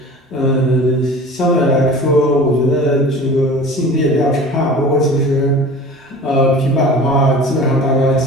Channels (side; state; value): both; normal; correlation 0.40